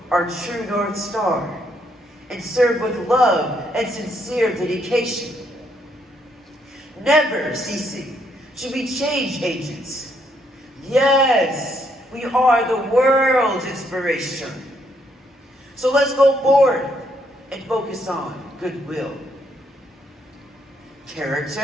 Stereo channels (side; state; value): both; normal; correlation 0.73